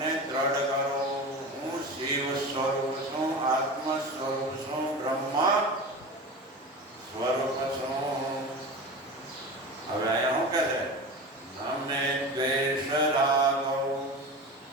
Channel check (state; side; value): normal; both; correlation 0.30